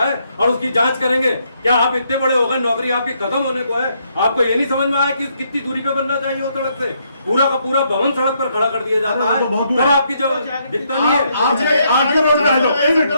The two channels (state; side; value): inverted; both; correlation -0.74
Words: और उसकी जांच करेंगे। क्या आप इतने बड़े हो गए, नौकरी आपकी खत्म होने को है, आपको ये नहीं समझ में आया कि कितनी दूरी पे बनना चाहिए वो सड़क से? पूरा का पूरा भवन सड़क पर खड़ा कर दिया जाता है, तब आपकी जो दिखता नहीं है। आरटीओ रोड पे आ जाओ,